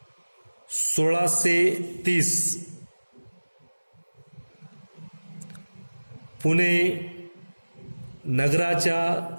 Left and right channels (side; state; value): both; inverted; correlation -1.00